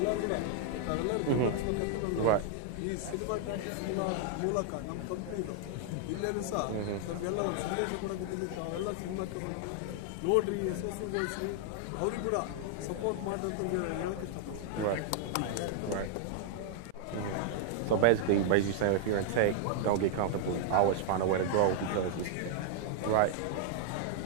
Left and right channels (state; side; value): different; both; correlation -0.01